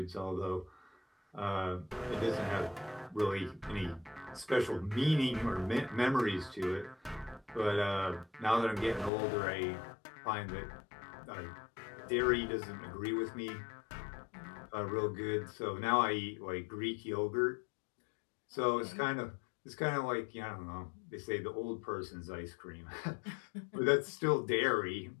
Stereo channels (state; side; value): drops out; right; at 9.1 s